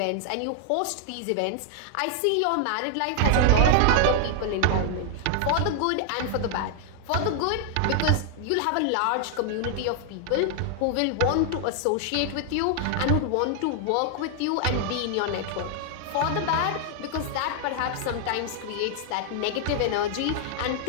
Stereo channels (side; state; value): both; different; correlation 0.00